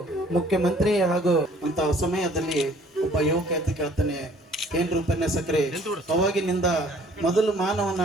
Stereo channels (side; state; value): both; normal; correlation 0.56